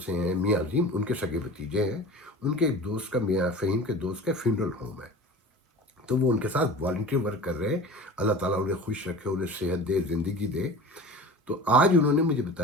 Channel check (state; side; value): normal; both; correlation 0.37